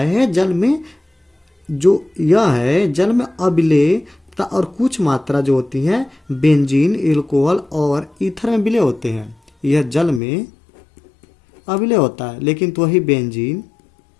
जल में, जो यह है जल में अविलेय और कुछ मात्रा जो होती है बेंजीन, एल्कोहल और ईथर में विलय होते हैं। यह जल में अविलेय होता है, लेकिन तो वही बेंजीन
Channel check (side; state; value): right; drops out; at 10.2 s